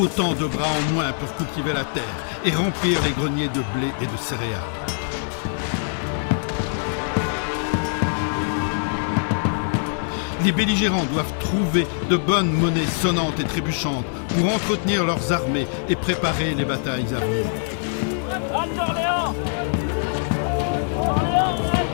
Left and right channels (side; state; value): right; silent; 63 dB below the other